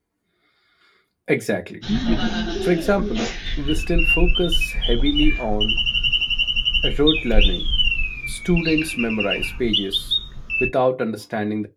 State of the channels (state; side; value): identical; both; correlation 1.00